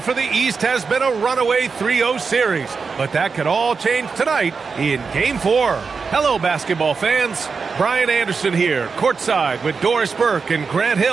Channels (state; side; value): quieter; left; 5.1 dB